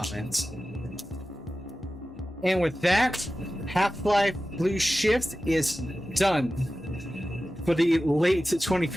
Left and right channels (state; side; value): normal; both; correlation 0.94